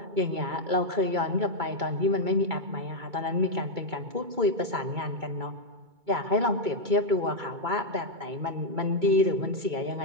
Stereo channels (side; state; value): left; late; 2.2 ms